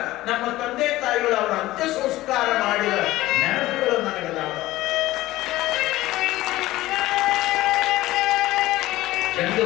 ನಮ್ಮ ತಂದೆ ತಾಯಿಗಳು ಅವರ ಅಂತ್ಯ ಸಂಸ್ಕಾರ ಮಾಡಿದ ನೆನಪುಗಳು ನನಗದಾವ.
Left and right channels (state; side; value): quieter; right; 16.8 dB